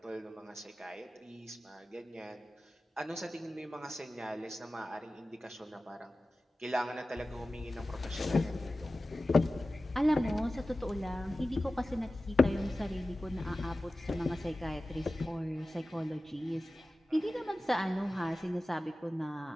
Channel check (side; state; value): both; normal; correlation 0.95